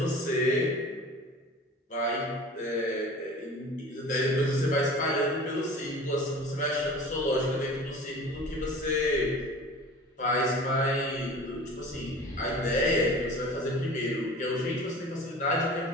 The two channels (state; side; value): normal; both; correlation 0.40